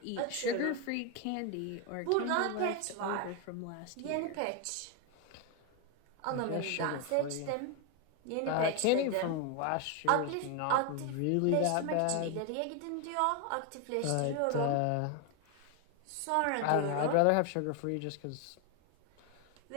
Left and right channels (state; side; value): different; both; correlation 0.01